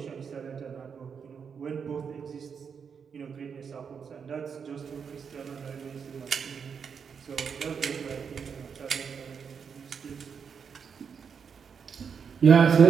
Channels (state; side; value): quieter; left; 6.5 dB